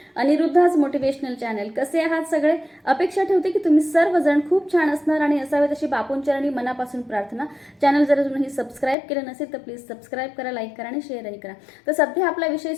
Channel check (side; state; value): right; drops out; at 9.0 s